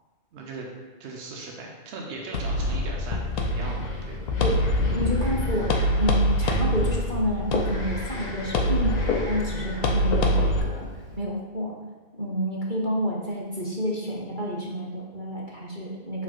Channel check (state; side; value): late; left; 2.3 ms